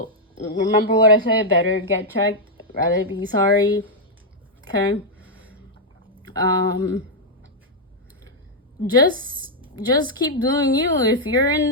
remember what I said. Better get checked. Rather be sorry. Okay? Just keep doing you. If you're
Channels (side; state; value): both; normal; correlation -0.02